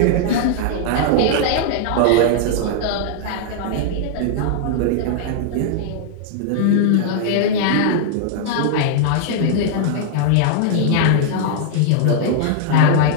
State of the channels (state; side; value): different; both; correlation -0.01